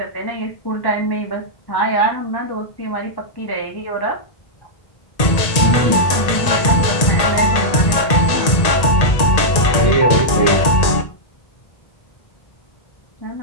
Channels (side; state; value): right; late; 1.8 ms